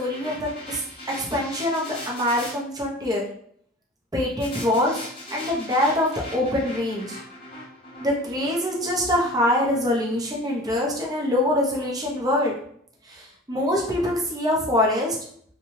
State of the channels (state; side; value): normal; both; correlation 0.39